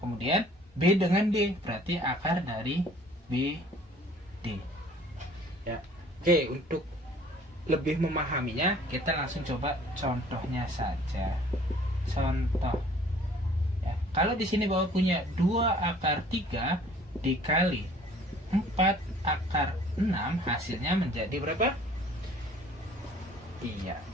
B dengan D, berarti akar dari B D ya. Oke, untuk lebih memahaminya kita langsung coba contohnya saja. Contoh ya, kalau di sini Bapak punya 2 akar 3 dikali 4 akar 6, hasilnya menjadi berapa? Iya,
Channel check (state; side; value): normal; both; correlation 0.53